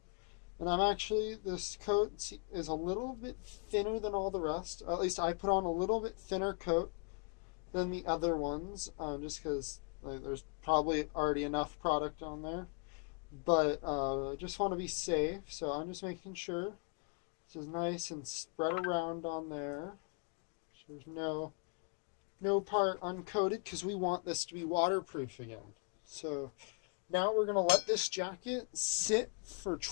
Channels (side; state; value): right; quieter; 37.5 dB